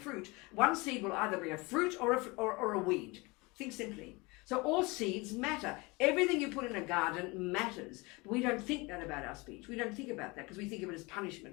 One seed will either bring a fruit or a weed. Think simply. So all seeds matter. Everything you put in a garden matters. But we don't think that about our speech. We don't think about that because we think of it as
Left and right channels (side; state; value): right; quieter; 25.4 dB